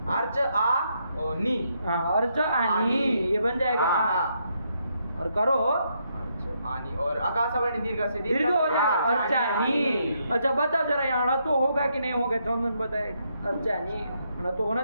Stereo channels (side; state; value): both; inverted; correlation -0.77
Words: अर्च आ और नी। हाँ अर्च आनी ये बन जाएगा। और करो आनी और आकाश वर्ण दीर्घ से दीर्घ हो जाएगा अर्चानी। अच्छा बताओ जरा यहाँ तो होगा कि नहीं होगा? चंदन बताएगा। अर्चानी तो होना